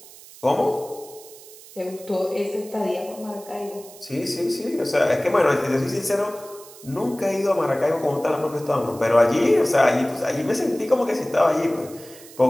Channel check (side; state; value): right; noise; hiss, 19 dB below the sound